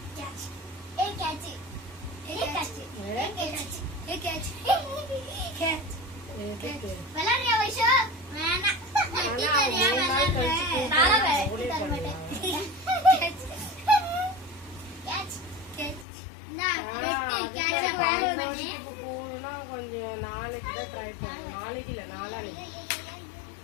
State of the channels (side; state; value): right; drops out; at 16.1 s